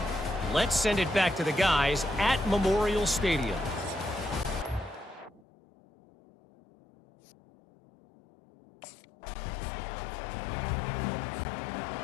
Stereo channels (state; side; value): drops out; right; at 5.4 s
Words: let's send it back to the guys at Memorial Stadium.